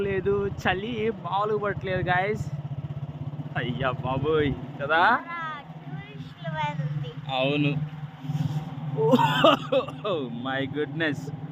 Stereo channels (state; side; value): identical; both; correlation 1.00